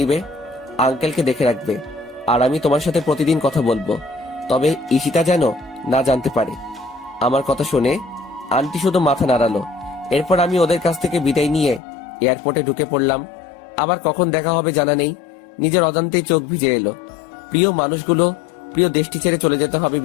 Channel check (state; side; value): drops out; right; at 11.8 s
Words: আঙ্কেলকে দেখে রাখবে, আর আমি তোমার সাথে প্রতিদিন কথা বলবো, তবে ঈশিতা যেন না জানতে পারে। আমার কথা শুনে আন্টি শুধু মাথা নাড়ালো। এরপর আমি ওদের কাছ থেকে বিদায় নিয়ে এয়ারপোর্টে ঢুকে পড়লাম। আবার কখন দেখা হবে জানা নেই, নিজের অজান্তেই চোখ ভিজে এলো। প্রিয় মানুষগুলো, প্রিয় দেশটি ছেড়ে চলে যেতে হবে